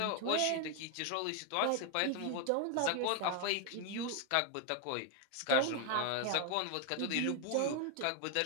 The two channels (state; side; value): different; both; correlation 0.01